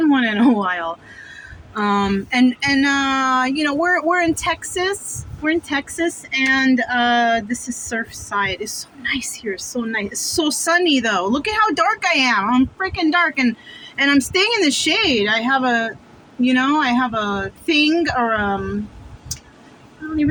one in a while. We're in Texas. We're in Texas, and this is Surfside. It's so nice here. It's so nice. It's so sunny though. Look at how dark I am. I'm freaking dark, and I'm staying in the shade. I have a thing or I don't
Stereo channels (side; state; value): both; identical; correlation 1.00